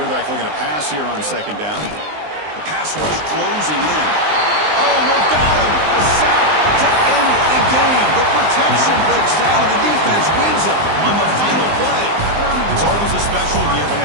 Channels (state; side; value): late; left; 19 ms